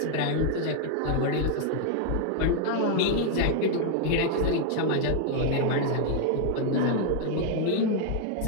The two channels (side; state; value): both; different; correlation 0.00